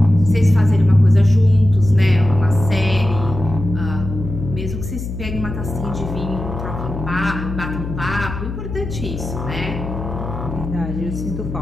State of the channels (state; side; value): noise; left; hum, 7 dB below the sound